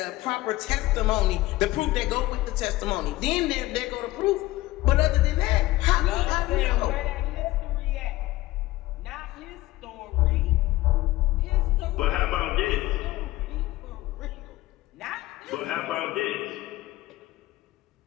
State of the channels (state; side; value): quieter; right; 17.8 dB